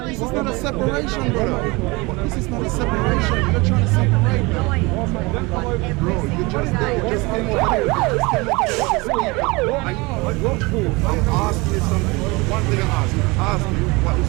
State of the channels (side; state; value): left; quieter; 24.8 dB